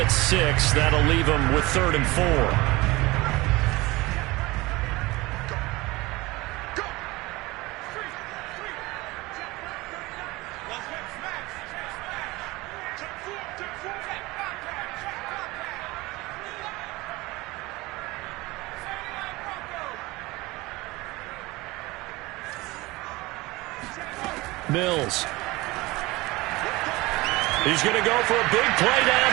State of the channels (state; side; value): quieter; left; 21.4 dB